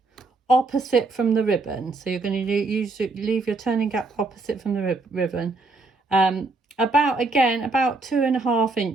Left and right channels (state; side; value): quieter; left; 3.4 dB